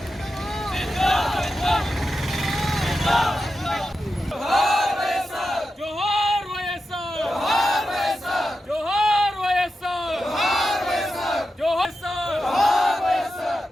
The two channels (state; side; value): normal; both; correlation 0.90